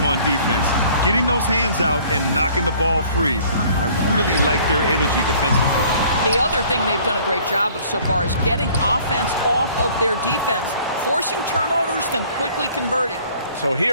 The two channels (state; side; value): inverted; both; correlation -0.54